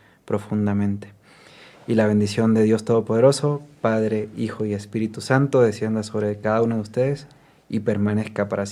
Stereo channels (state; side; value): identical; both; correlation 1.00